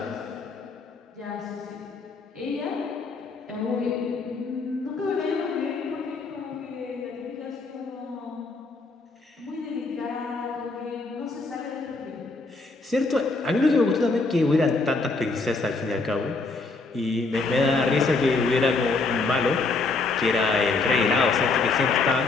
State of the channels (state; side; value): quieter; right; 3.8 dB